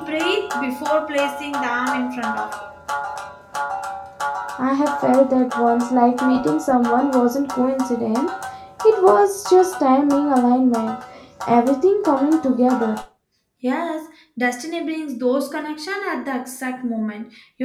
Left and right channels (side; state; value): both; identical; correlation 1.00